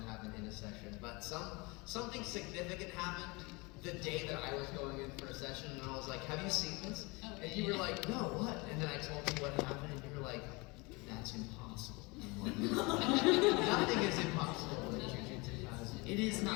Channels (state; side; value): quieter; right; 26.4 dB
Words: happened in a session, but something significant happened the day that I was going in for a session, and I was like, have you seen this? And you were like, no, what? And then I told you what happened, and you were like, that's impossible. I'm like, nothing is impossible in Jujutsu Kaisen. it is